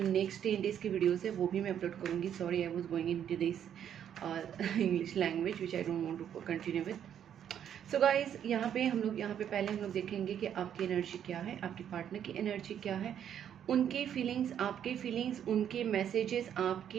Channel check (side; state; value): left; quieter; 9.4 dB